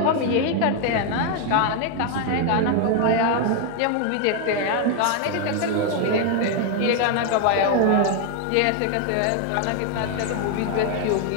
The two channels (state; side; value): different; both; correlation 0.01